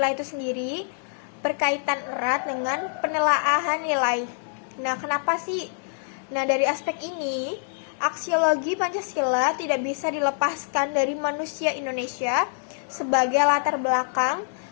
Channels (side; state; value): right; silent; 59 dB below the other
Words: itu sendiri berkaitan erat dengan penelaahan nilai. Nah, kenapa sih? Nah, dari aspek ini, aksiologi Pancasila tidak bisa dilepaskan dari manusia Indonesia sebagai latar belakang,